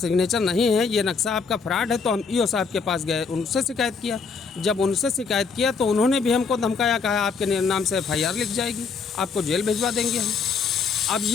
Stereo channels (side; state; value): right; quieter; 5.2 dB